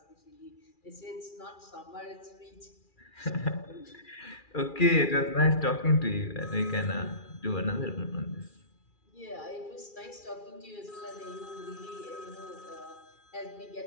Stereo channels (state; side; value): late; right; 2.4 ms